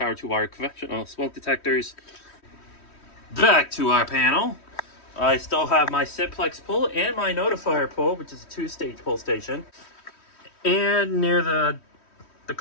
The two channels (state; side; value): late; right; 3.1 ms